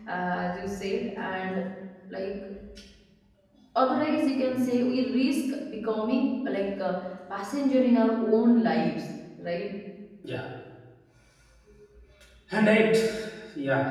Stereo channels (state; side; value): identical; both; correlation 1.00